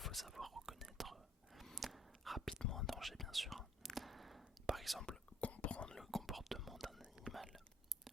savoir reconnaître rapidement un danger, bien sûr. Par exemple, comprendre le comportement d'un animal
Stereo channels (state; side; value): normal; both; correlation 0.60